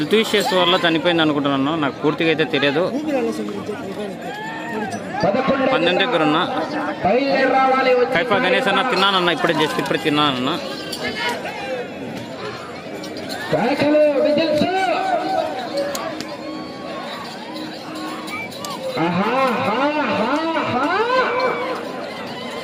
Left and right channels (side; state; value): both; identical; correlation 1.00